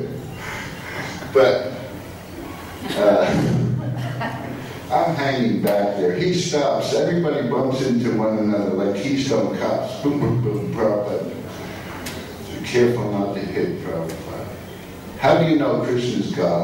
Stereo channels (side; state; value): both; identical; correlation 1.00